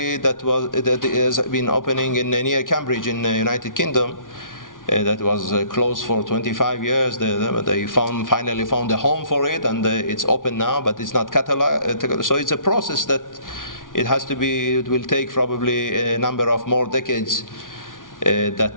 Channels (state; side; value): late; right; 0.88 ms